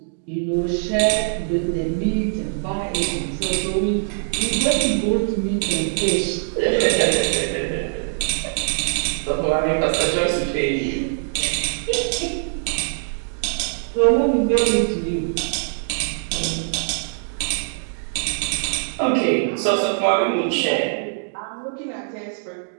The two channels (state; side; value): silent; left; digital silence